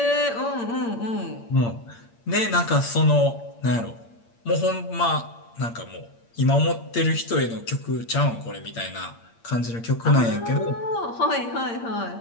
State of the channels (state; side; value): late; right; 8.7 ms